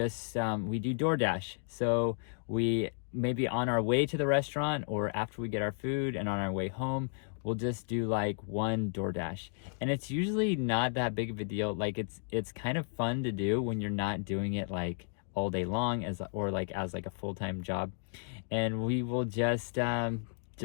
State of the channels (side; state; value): right; silent; 56 dB below the other